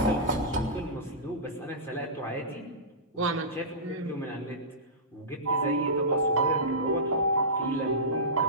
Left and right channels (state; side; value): normal; both; correlation -0.18